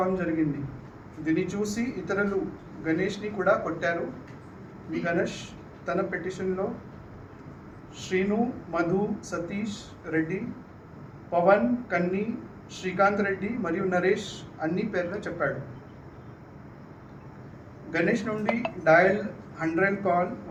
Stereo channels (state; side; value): identical; both; correlation 1.00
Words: జరిగింది. దీన్ని చూసి ఇతరులు గణేష్ని కూడా కొట్టారు. ఈ గణేష్ తన పిటిషన్లో శ్రీను, మధు, సతీష్ రెడ్డి, పవన్, కన్ని, శ్రీకాంత్ రెడ్డి మరియు నరేష్ అన్ని పేర్లు చెప్పాడు. గణేష్ నుండి డయల్ 100 కాల్